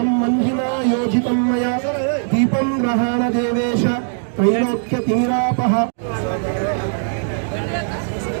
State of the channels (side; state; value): left; silent; digital silence